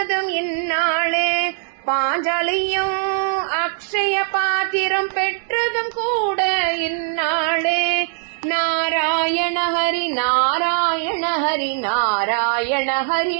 இந்நாளே. பாஞ்சாலியும் அக்ஷய பாத்திரம் பெற்றதும் கூட இந்நாளே. நாராயண ஹரி நாராயண ஹரி நாராயண ஹரி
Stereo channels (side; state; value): left; silent; digital silence